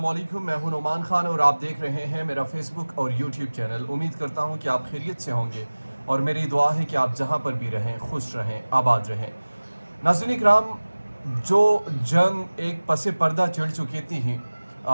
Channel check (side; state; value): both; inverted; correlation -1.00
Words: वालेकुम। मैं हूं नोमान खान और आप देख रहे हैं मेरा फेसबुक और यूट्यूब चैनल। उम्मीद करता हूं कि आप खैरियत से होंगे और मेरी दुआ है कि आप जहां पर भी रहें खुश रहें, आबाद रहें। नाज़रीन इकराम, जो जंग एक पसे पर्दा चढ़ चुकी थी